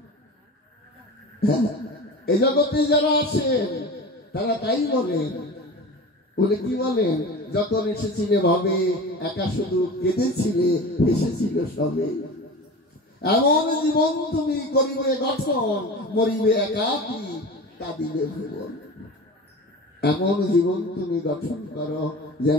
এই জগতে যারা আসেন তারা তাই বলেন, বলে কি বলেন, যখন এসেছিলে ভাবে একা শুধু কেঁদেছিলে, এসেছিল সবে। এমন জীবন তুমি করিবে গঠন, মরিবে একাকী কাঁদিবে ভুবন। এমন জীবন তুমি গঠন করো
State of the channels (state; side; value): normal; both; correlation 0.33